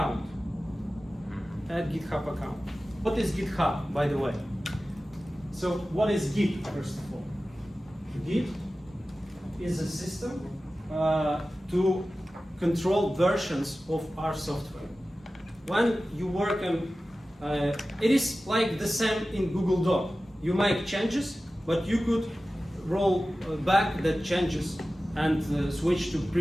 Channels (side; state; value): both; normal; correlation 0.95